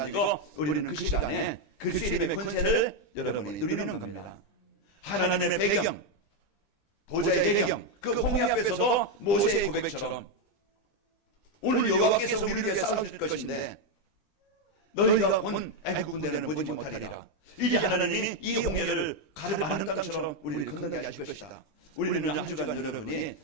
우리는 그 시간에 그리스도의 이름의 권세를 여러분이 누리는 겁니다. 하나님의 배경 보좌의 배경 그 홍해 앞에서도 모세의 고백처럼 오늘 여호와께서 우리를 위해 싸우실 것인데 너희가 본 애국 군대는 보지 못하리라. 이제 하나님이 이 홍해를 가르 많은 땅처럼 우리를 건너게 하실 것이다. 우리는 한 주간 여러분이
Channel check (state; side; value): late; right; 20 ms